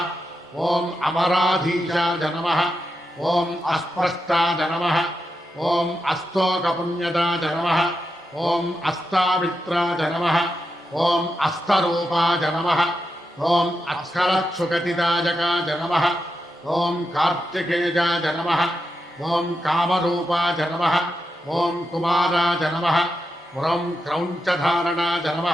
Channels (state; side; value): normal; both; correlation 0.87